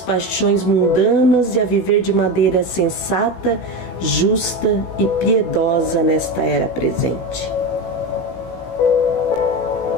mundanas e a viver de maneira sensata, justa e piedosa nesta era presente.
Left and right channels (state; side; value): late; right; 17 ms